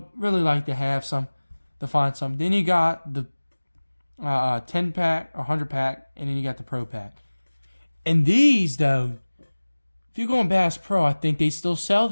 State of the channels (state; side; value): inverted; both; correlation -1.00